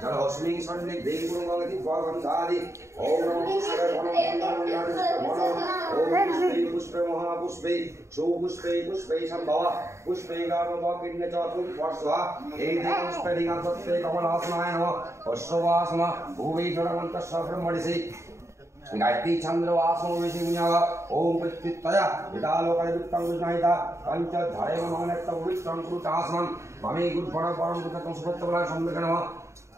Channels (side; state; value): left; late; 0.14 ms